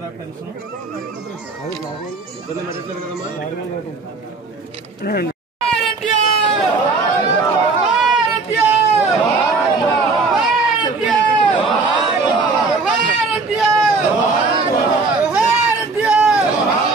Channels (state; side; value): quieter; left; 4.0 dB